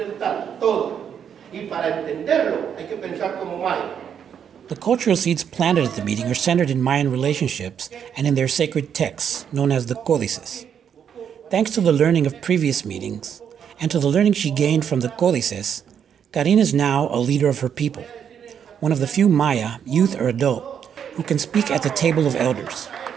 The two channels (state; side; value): quieter; left; 8.1 dB